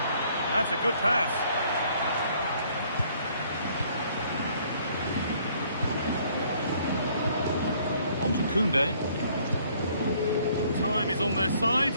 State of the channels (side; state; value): both; inverted; correlation -0.62